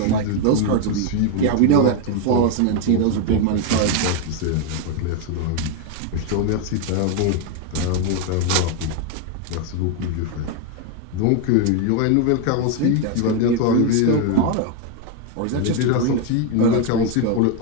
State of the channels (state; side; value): different; both; correlation 0.01